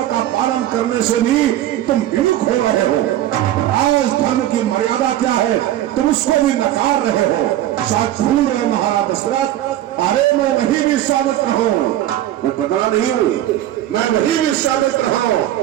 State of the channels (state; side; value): quieter; left; 13.1 dB